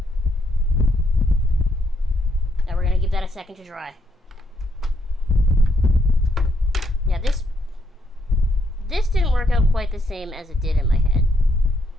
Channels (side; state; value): both; normal; correlation 0.75